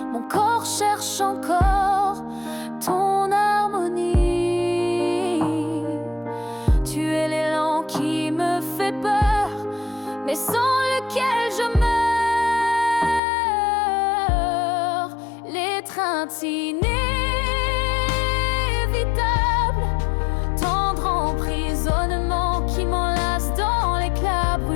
mon corps cherche encore ton harmonie. Tu es l'élan qui me fait peur, mais sans lequel je meurs. L'étreinte inévitable, tendre emprisonnement qui m'enlace dans l'éclat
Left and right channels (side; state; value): right; drops out; at 13.2 s